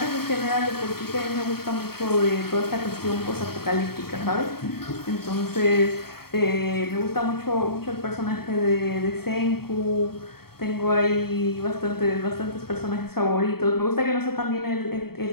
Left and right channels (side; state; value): right; late; 0.95 ms